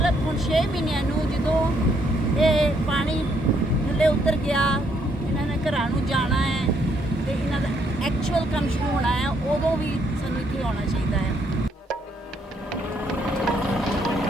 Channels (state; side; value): normal; both; correlation 0.71